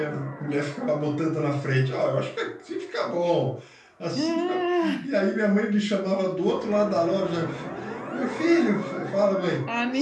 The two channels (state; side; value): identical; both; correlation 1.00